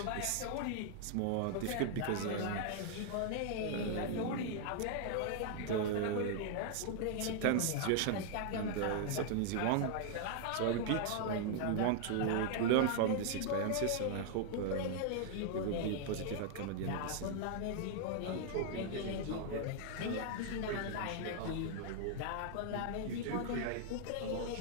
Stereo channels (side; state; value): both; different; correlation 0.00